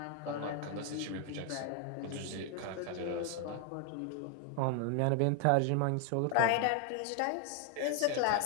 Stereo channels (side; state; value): both; different; correlation 0.00